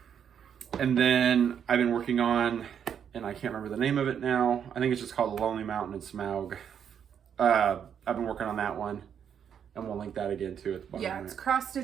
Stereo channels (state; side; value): quieter; left; 8.2 dB